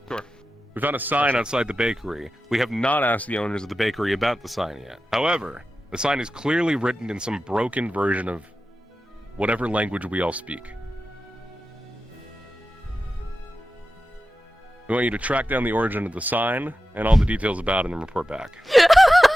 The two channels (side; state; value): both; normal; correlation 0.93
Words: Sure. We found a sign outside the bakery. We have not asked the owners of the bakery about the sign yet. However, the sign is clearly written in some broken version of whatever language we all speak. We want you to track down the origin of the sign and all the details about it and report back. Yes,